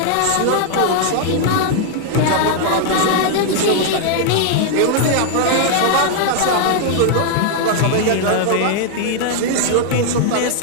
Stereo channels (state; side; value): different; both; correlation 0.00